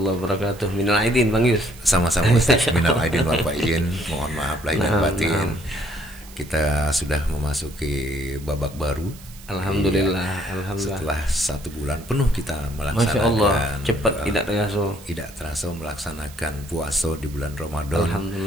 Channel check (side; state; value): right; noise; hiss, 20 dB below the sound